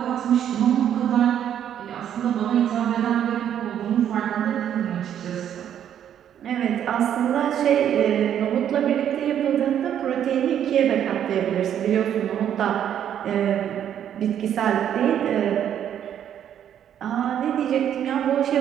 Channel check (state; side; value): quieter; left; 9.8 dB